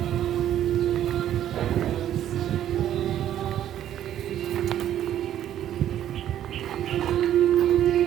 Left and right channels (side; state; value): left; quieter; 11.3 dB